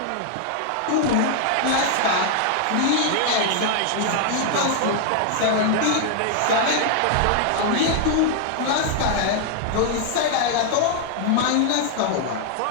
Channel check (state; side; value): different; both; correlation 0.00